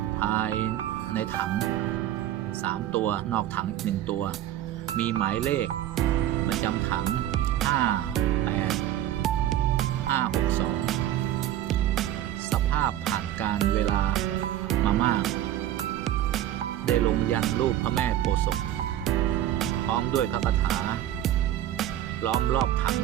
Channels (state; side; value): quieter; left; 12.4 dB